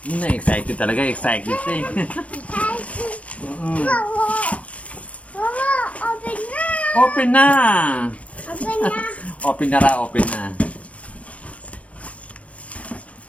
nga, excited talaga, excited siya Open na! Open na.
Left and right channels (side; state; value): right; late; 0.065 ms